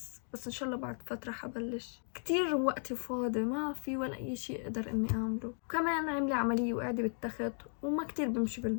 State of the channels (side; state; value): right; silent; 54 dB below the other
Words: بس ان شاء الله بعد فترة حبلش. كتير وقتي فاضي، ما في ولا اي شي اقدر اني اعمله. وكمان عاملة عملية وقاعدة بالتخت، وما كتير بمشي